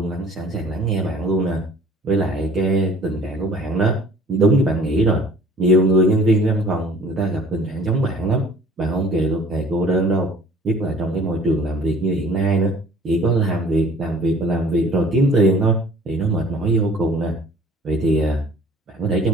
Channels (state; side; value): normal; both; correlation 0.51